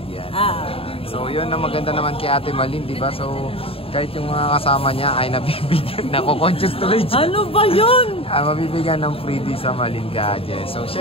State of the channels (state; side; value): late; right; 0.27 ms